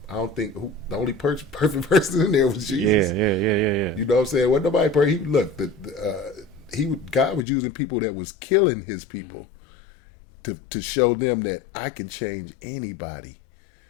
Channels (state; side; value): drops out; right; at 7.5 s